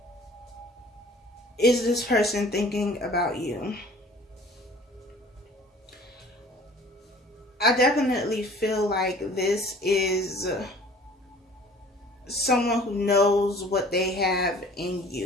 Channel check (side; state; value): both; normal; correlation 0.49